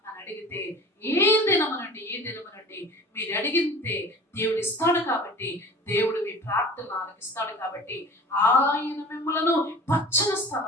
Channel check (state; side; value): normal; both; correlation 0.41